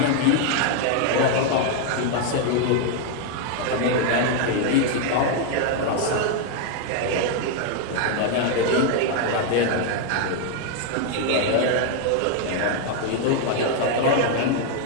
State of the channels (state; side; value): different; both; correlation 0.00